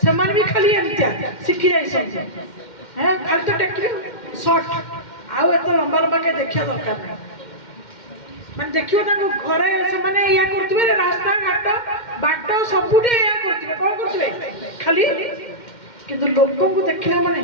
ସେମାନେ ବି ଖାଲି ଏମିତିଆ ଶିଖି ଯାଇଛନ୍ତି। ଖାଲି ତ ଟେକିବେ ସର୍ଟ, ଆଉ ଏତେ ଲମ୍ବା ଲମ୍ବା କେ ଦେଖିବା ଦରକାର ନାହିଁ। ମାନେ ଦେଖିବ ତାଙ୍କୁ ଘରେ ସେମାନେ ଏଇଆ କରୁଥିବେ, ରାସ୍ତା ଘାଟ ବାଟ ସବୁଠି ଏଇଆ କରୁଥିବେ। କଣ କରୁଥିବେ ଖାଲି, କିନ୍ତୁ ଲୋକଙ୍କୁ ଦେଖିଲା ମାନେ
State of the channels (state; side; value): late; right; 2.1 ms